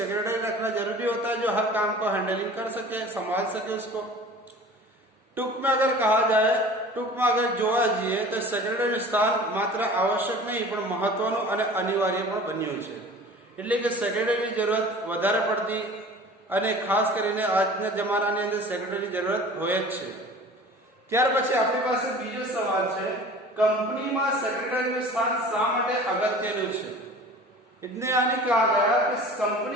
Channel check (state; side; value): normal; both; correlation 0.42